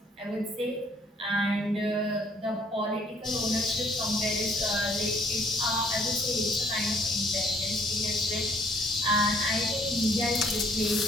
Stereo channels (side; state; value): both; normal; correlation 0.62